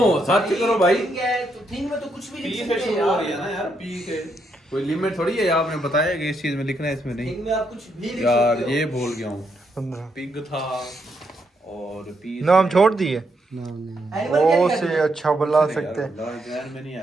सर्च करो भाई। थिंग में तो कुछ भी पी लिख से सकते शुरू हैं हो रही है यार। ना यार, पी से कोई लिमिट थोड़ी है। आपने बताया कि इस चीज में लिखना है, इसमें नहीं। थिंग में आप कुछ भी लिख यार सकते हो। ये भूल गया हूँ। 15 पिग था और पी नाम छोड़ दिए। एनिमल क्या ओ लिखा से है? अच्छा बुला सकते हैं। ध्यान में नहीं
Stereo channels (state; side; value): normal; both; correlation 0.78